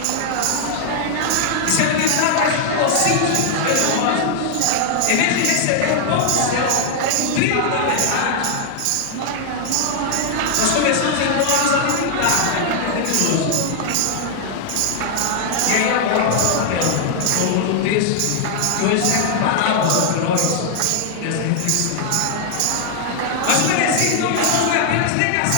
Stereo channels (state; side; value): different; both; correlation 0.00